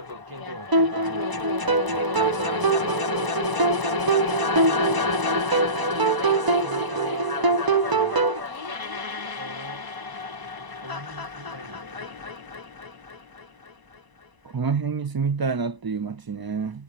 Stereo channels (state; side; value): late; left; 1.0 ms